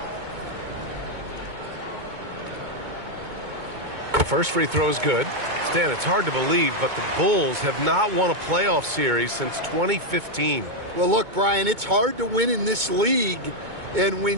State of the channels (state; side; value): late; left; 2.2 ms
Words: First free throw is good. Stan, it's hard to believe, but the Bulls have not won a playoff series since 2015. Well, look, Brian, it's hard to win in this league, and